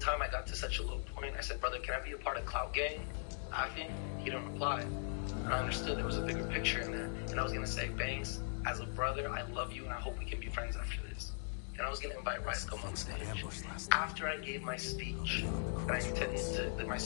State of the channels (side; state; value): right; silent; digital silence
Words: I got to such a low point, I said, brother, can I be a part of Clout Gang? He didn't reply. And I understood there was a bigger picture in that. And I was going to say, Banks, as a brother, I love you and I hope we can be friends after this. And I was going to invite Rice Gum on stage. After I gave my speech, and I intended to, that my